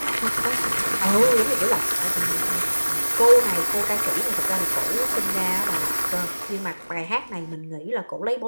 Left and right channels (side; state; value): both; inverted; correlation -1.00